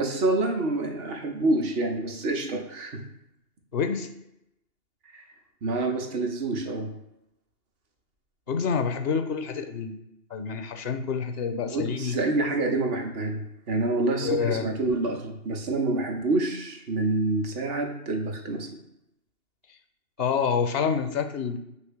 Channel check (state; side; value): late; left; 2.8 ms